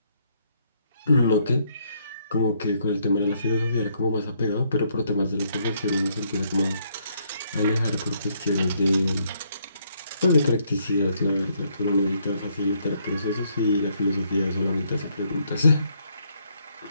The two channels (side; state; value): both; inverted; correlation -0.71